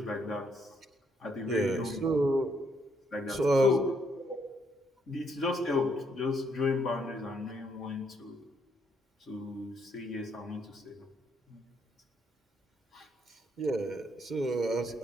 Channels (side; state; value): both; normal; correlation 0.72